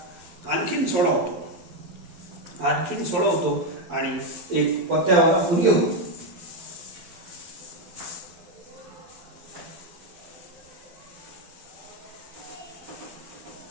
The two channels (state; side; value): late; left; 12 ms